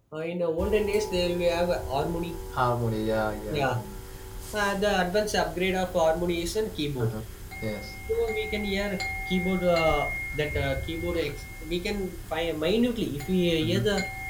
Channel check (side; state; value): both; identical; correlation 1.00